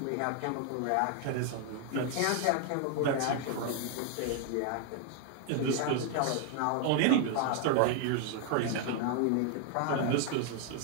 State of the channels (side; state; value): both; different; correlation 0.00